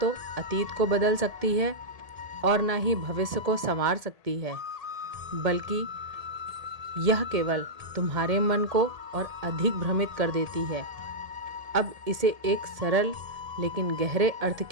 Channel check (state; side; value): late; left; 1.8 ms